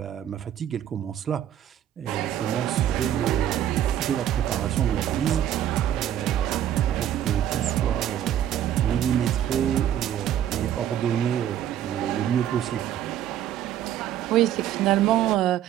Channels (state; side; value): quieter; left; 11.0 dB